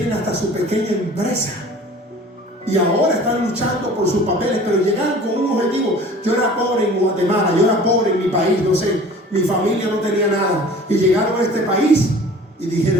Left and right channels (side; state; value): both; normal; correlation 0.45